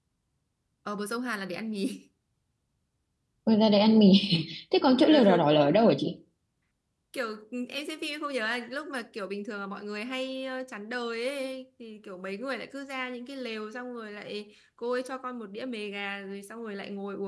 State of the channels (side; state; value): both; identical; correlation 1.00